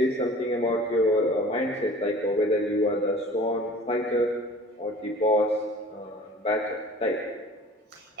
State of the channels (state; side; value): normal; both; correlation 0.45